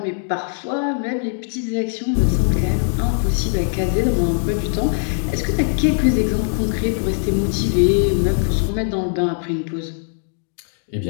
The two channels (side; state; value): right; silent; 65 dB below the other